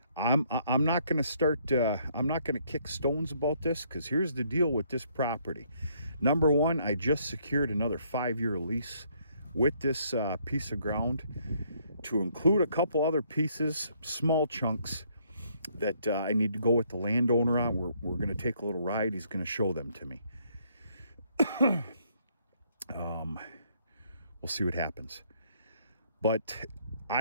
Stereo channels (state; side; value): inverted; both; correlation -0.68